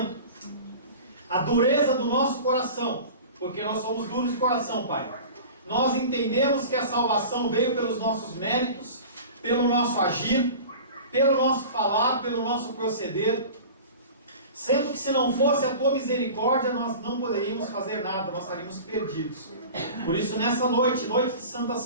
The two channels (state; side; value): inverted; both; correlation -0.38